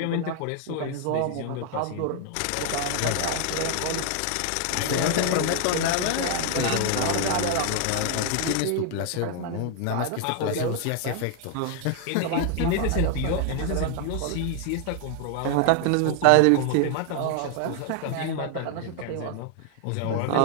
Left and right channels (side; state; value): both; different; correlation 0.00